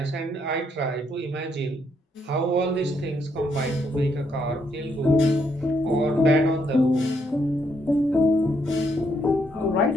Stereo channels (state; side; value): normal; both; correlation 0.74